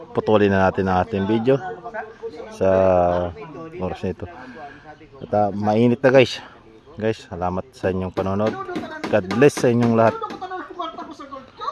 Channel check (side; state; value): both; identical; correlation 1.00